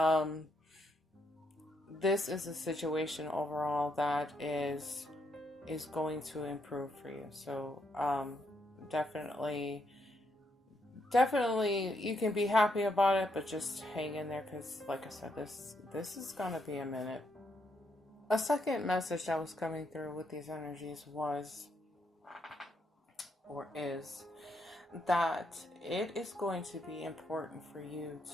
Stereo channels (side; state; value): both; normal; correlation 0.77